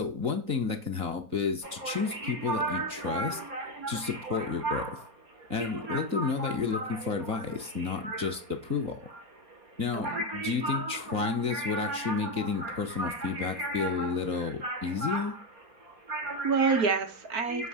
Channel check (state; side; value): late; left; 3.9 ms